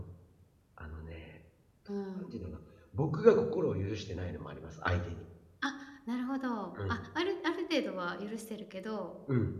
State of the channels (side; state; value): both; identical; correlation 1.00